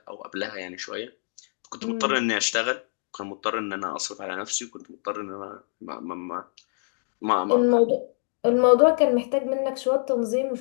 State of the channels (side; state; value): right; silent; digital silence